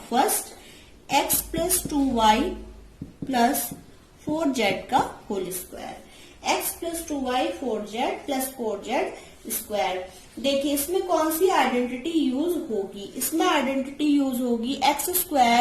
first X plus 2y plus 4z का whole square, X plus 2y 4z plus 4z square. देखिए इसमें कौन सी आइडेंटिटी यूज होगी, इसमें आइडेंटिटी यूज होगी एक्स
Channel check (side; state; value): both; identical; correlation 1.00